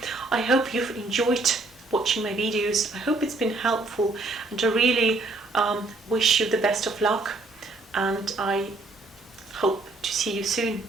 I hope you've enjoyed watching my videos. I hope it's been helpful, and I really wish you the best of luck, and I hope to see you soon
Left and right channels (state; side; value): quieter; left; 3.2 dB